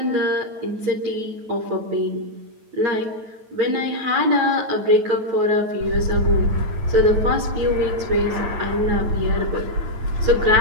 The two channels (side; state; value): left; late; 9.1 ms